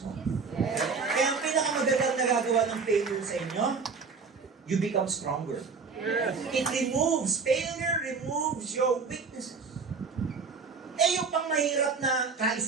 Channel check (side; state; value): left; quieter; 5.0 dB